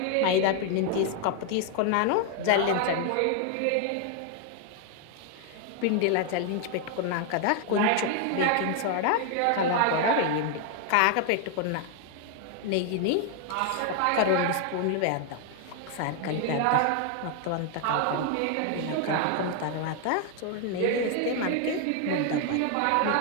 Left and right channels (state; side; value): different; both; correlation 0.00